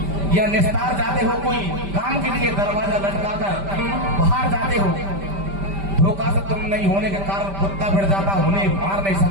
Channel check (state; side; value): late; left; 5.1 ms